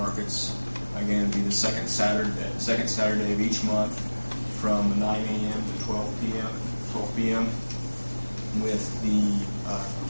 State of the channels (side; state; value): both; inverted; correlation -1.00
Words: Again, it'd be the second Saturday of each month from 9 a.m. to 12 p.m. with the